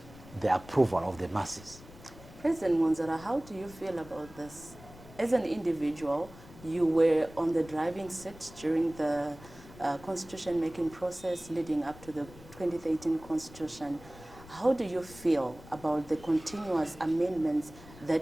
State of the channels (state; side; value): noise; left; rumble, 19 dB below the sound